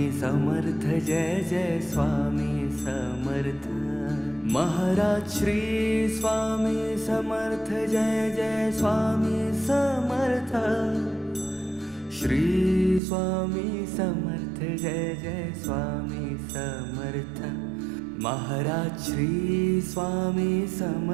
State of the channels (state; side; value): drops out; left; at 13.0 s